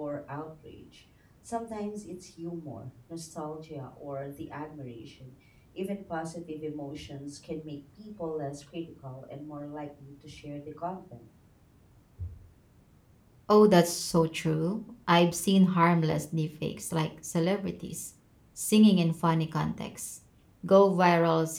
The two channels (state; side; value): identical; both; correlation 1.00